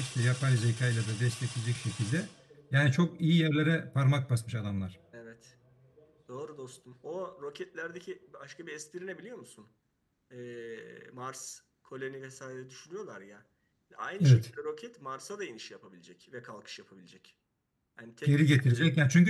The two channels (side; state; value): both; identical; correlation 1.00